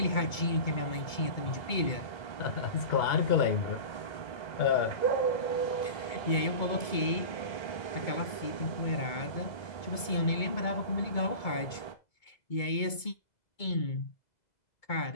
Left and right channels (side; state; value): right; late; 2.2 ms